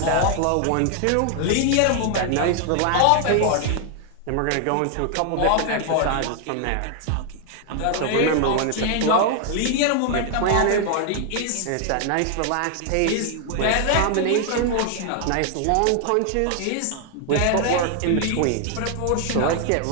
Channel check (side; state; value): both; different; correlation 0.00